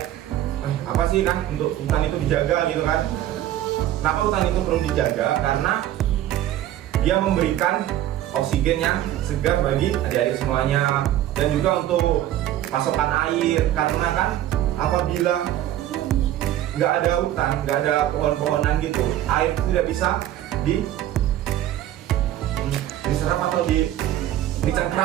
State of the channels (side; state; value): left; quieter; 12.8 dB